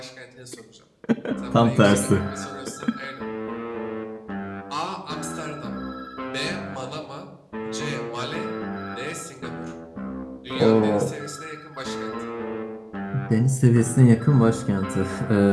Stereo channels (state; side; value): identical; both; correlation 1.00